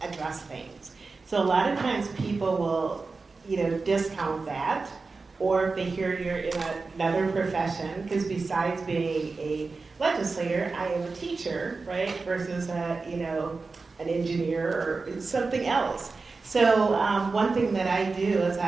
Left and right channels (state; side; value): quieter; left; 4.1 dB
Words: address things. So a lot of times people will, discount that, or if they hear you're in another profession, because besides being a legislator, I am a teacher, right, versus an engineer or something else. So one thing that I do is